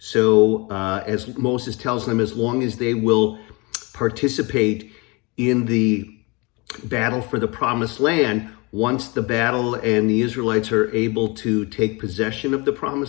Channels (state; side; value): quieter; right; 27.7 dB